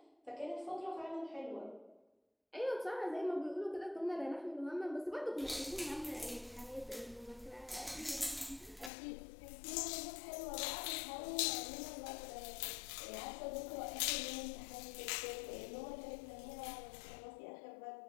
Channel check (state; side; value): drops out; right; at 8.9 s